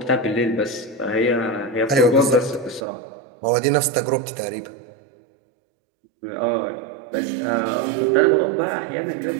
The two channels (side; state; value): left; drops out; at 2.8 s